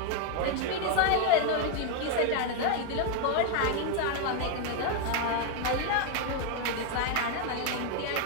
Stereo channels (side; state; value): both; different; correlation 0.01